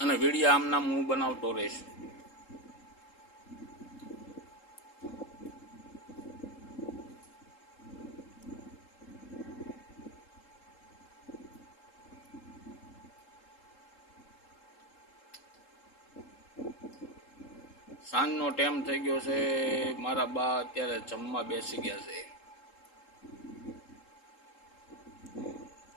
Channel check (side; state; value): right; late; 3.7 ms